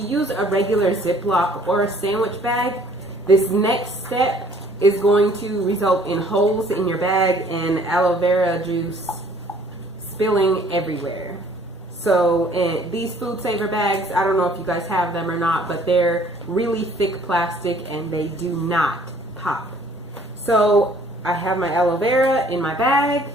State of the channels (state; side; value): normal; both; correlation 0.57